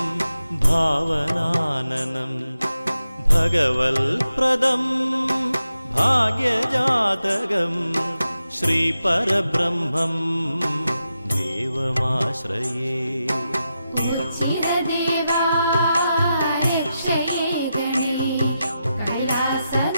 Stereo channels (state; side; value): inverted; both; correlation -0.88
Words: भावनाननं भगवल्प्रदं भाग्यजातकं श्रीपरब्रह्मं देवमाश्रये ചിരദേവാ രക്ഷയേ ഗണേ